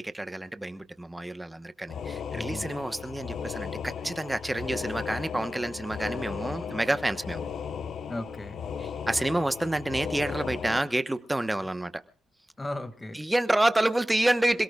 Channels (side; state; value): both; normal; correlation 0.95